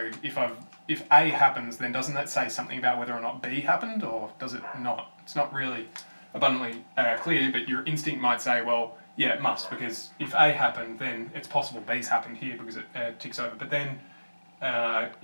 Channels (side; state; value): both; inverted; correlation -1.00